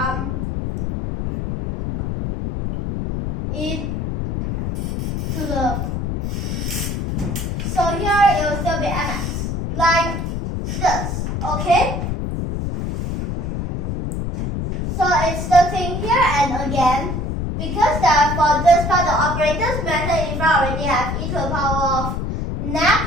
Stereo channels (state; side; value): noise; left; rumble, 3 dB below the sound